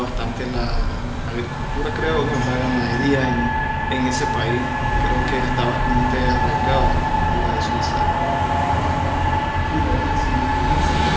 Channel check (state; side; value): identical; both; correlation 1.00